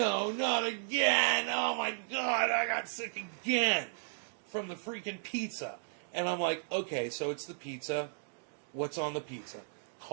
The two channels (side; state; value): left; silent; digital silence